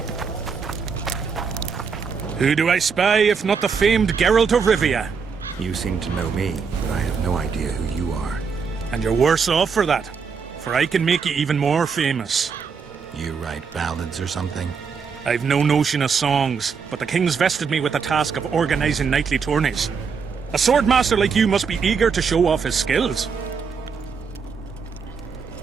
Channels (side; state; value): left; quieter; 5.8 dB